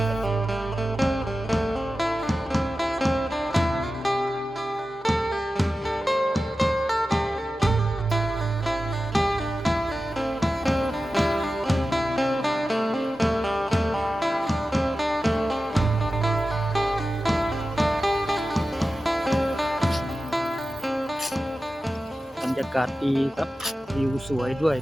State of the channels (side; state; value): both; normal; correlation 0.93